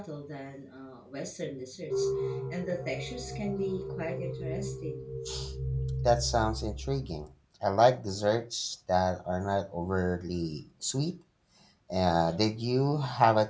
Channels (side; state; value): both; identical; correlation 1.00